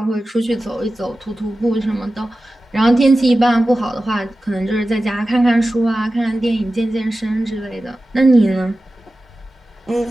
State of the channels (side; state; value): both; normal; correlation 0.95